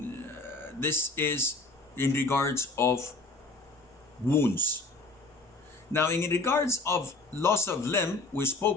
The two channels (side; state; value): right; quieter; 3.3 dB